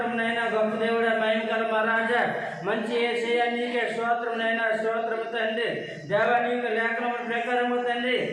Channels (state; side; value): identical; both; correlation 1.00